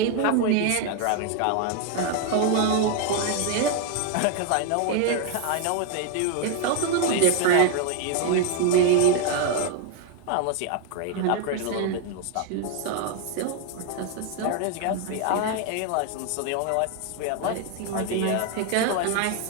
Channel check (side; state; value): both; different; correlation 0.01